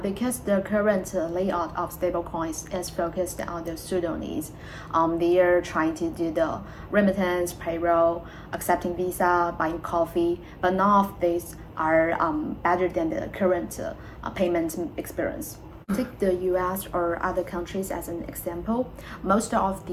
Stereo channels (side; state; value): both; identical; correlation 1.00